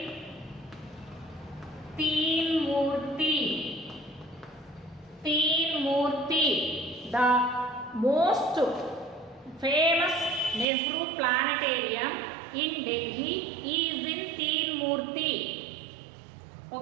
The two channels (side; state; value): left; drops out; at 10.7 s